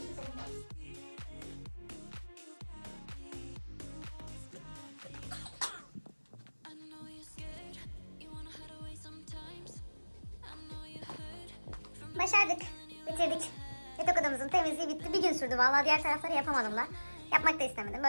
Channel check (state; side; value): inverted; both; correlation -1.00